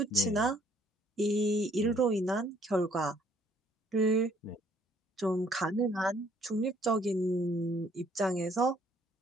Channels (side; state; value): both; normal; correlation 0.63